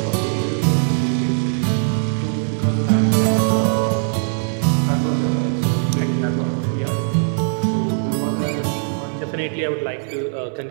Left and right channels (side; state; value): left; silent; digital silence